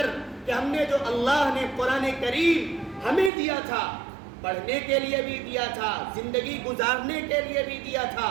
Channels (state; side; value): drops out; left; at 3.3 s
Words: کہ ہم نے جو اللہ نے قرآن کریم ہمیں دیا تھا، پڑھنے کے لیے بھی دیا تھا، زندگی گزارنے کے لیے بھی دیا تھا،